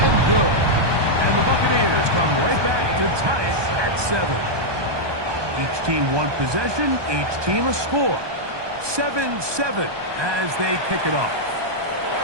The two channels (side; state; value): left; late; 1.2 ms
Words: good. And the Buccaneers come right back to tie it at 7. Each team one possession, each team a score. 7-7 as they kick it off.